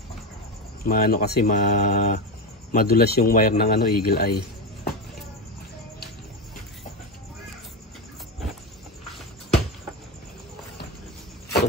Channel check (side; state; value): both; normal; correlation 0.16